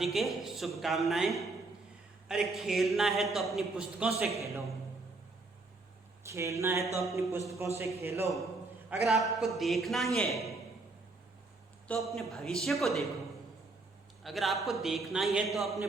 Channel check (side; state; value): left; quieter; 3.4 dB